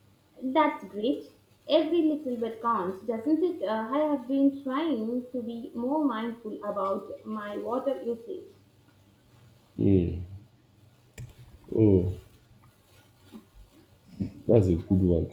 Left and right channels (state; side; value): identical; both; correlation 1.00